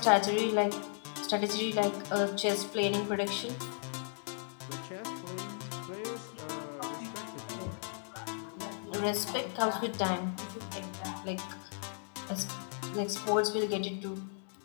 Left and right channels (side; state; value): right; silent; digital silence